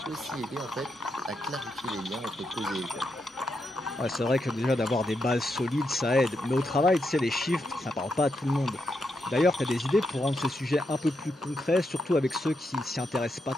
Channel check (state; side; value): normal; both; correlation 0.83